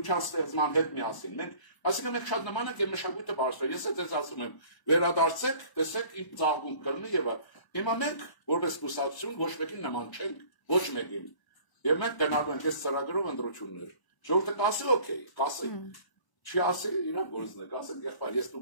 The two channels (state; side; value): late; right; 1.0 ms